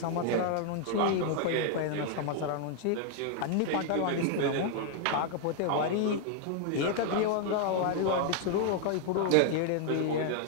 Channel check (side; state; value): both; different; correlation 0.00